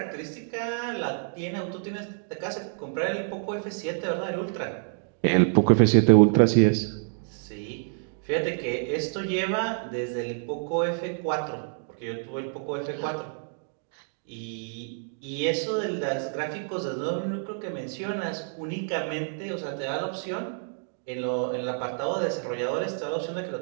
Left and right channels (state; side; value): silent; left; 59 dB below the other